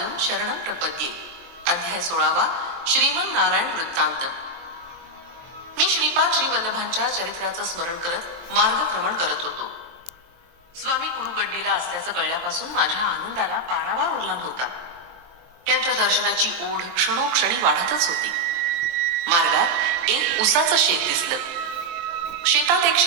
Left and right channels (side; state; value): left; late; 23 ms